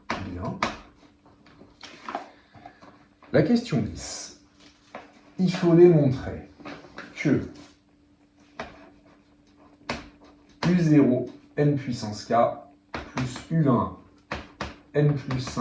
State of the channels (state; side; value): identical; both; correlation 1.00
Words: bien. La question 10. Il faut démontrer que U0 n puissance k plus U1 n plus